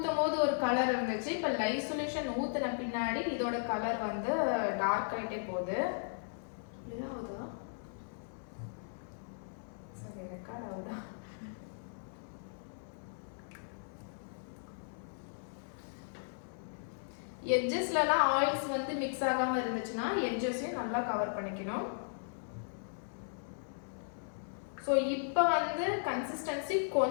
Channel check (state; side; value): silent; right; 53 dB below the other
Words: போது ஒரு கலர் இருந்துச்சு, இப்போ லைவ் சொல்யூஷன் ஊற்றின பின்னாடி இதோட கலர் வந்து டார்க் ஆகிட்டே போகுது. இல்லையா ஆகுதா? சரி ரெக்கார்ட் ஆகுதா? எட்ஜஸ்லலாம் ஆயில்ஸ் வந்து மிக்ஸ் ஆகாமல் இருந்துச்சுன்னா எட்ஜஸையும் நல்லா கவர் பண்ணிக்கணும். ஸோ இப்போ வந்து கன்சிஸ்டன்சி